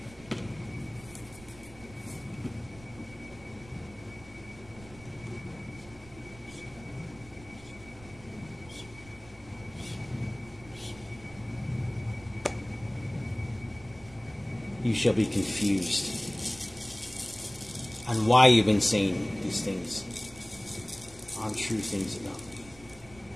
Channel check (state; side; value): noise; right; rumble, 21 dB below the sound